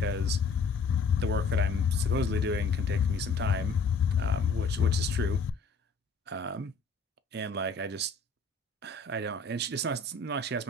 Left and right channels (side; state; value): right; quieter; 4.2 dB